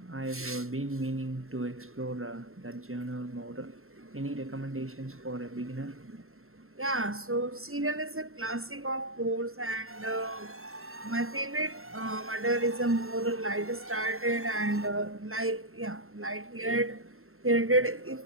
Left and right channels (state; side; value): late; left; 0.62 ms